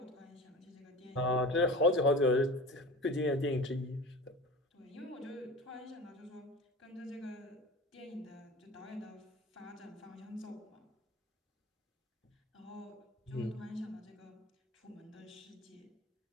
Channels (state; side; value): normal; both; correlation 0.35